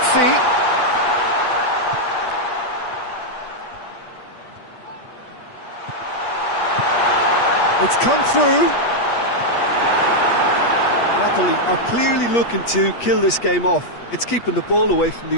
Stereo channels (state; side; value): late; right; 8.4 ms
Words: It's come through. Napoli are clearly looking to kill this game off. It's keeping the ball away from